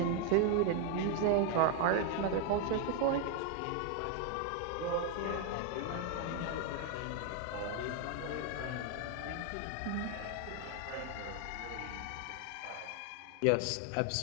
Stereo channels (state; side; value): different; both; correlation 0.01